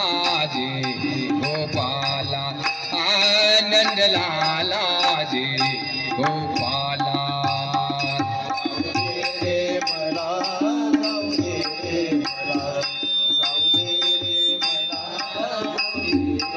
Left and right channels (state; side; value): identical; both; correlation 1.00